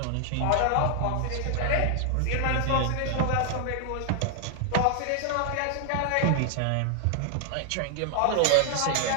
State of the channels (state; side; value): different; both; correlation 0.00